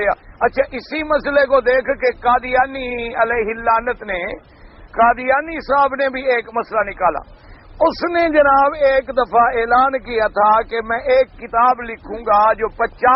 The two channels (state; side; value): identical; both; correlation 1.00